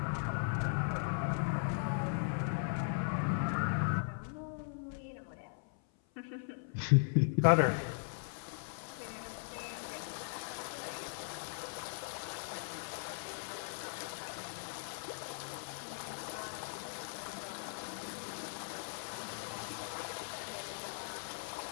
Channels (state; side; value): silent; right; 52 dB below the other